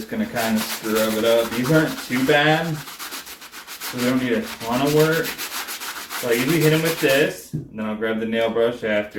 going to kind of scrub it up. These aren't too bad, so we don't need a ton of work. So I usually hit them with this, and then I'll grab the nail brush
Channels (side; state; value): both; identical; correlation 1.00